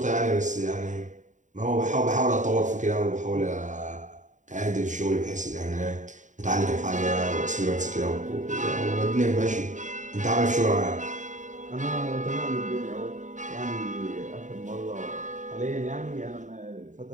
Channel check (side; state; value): left; late; 0.36 ms